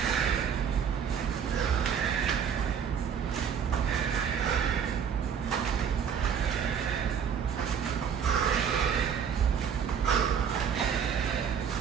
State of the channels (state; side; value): quieter; left; 7.5 dB